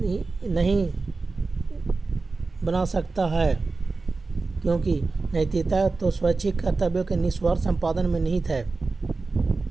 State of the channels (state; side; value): quieter; left; 3.8 dB